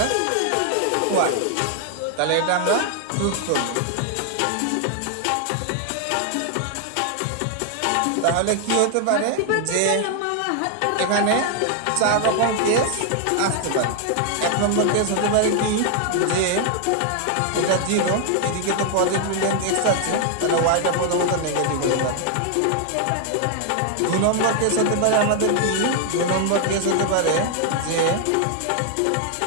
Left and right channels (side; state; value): both; different; correlation 0.00